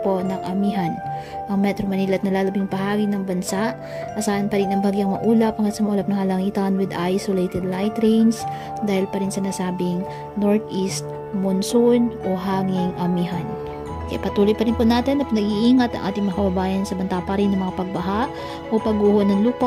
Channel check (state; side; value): identical; both; correlation 1.00